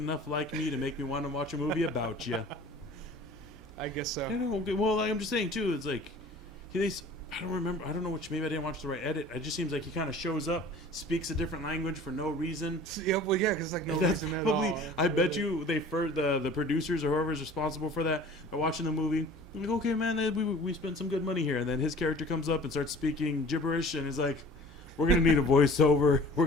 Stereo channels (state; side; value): normal; both; correlation 0.45